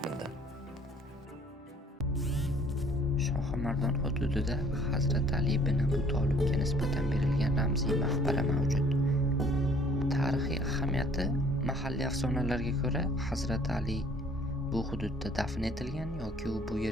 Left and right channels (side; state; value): both; normal; correlation 0.56